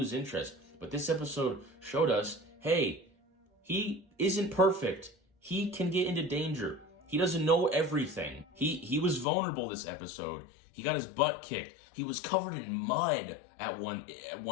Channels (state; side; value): drops out; right; at 9.2 s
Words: interest. But this episode showed us, hey, he isn't perfect. He can get into danger. He doesn't know everything. He was vulnerable this episode. He got his butt kicked. He was covered in mud at